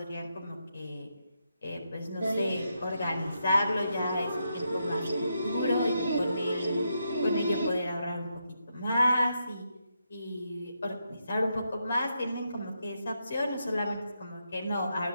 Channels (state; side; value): inverted; both; correlation -0.82